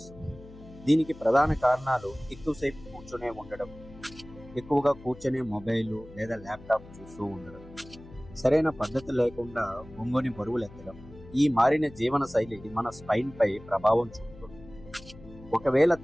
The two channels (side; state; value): left; noise; hum, 19 dB below the sound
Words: దీనికి ప్రధాన కారణాలు ఎక్కువసేపు కూర్చునే ఉండడం, ఎక్కువగా కూర్చునే మొబైల్ లేదా ల్యాప్టాప్ చూస్తూ ఉండడం, సరైన పద్ధతి లేకుండా ఒంగోని బరువులు ఎత్తడం. ఈ మారిన జీవన శైలి మన స్పైన్ పై ప్రభావం చూపుతుంది. ఒకవేళ